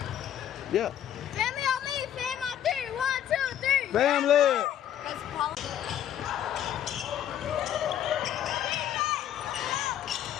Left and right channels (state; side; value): quieter; right; 10.7 dB